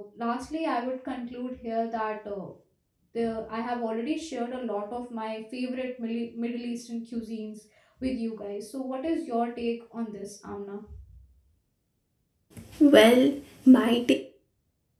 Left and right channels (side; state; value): both; identical; correlation 1.00